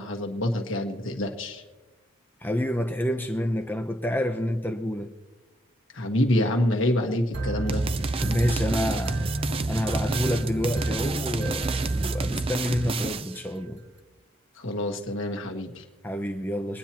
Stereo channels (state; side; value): normal; both; correlation 0.76